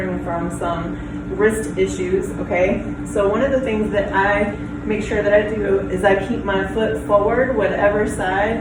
from some wrist issues, okay? So one of the things that I make sure that I do is I keep my foot forward, whatever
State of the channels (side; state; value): both; identical; correlation 1.00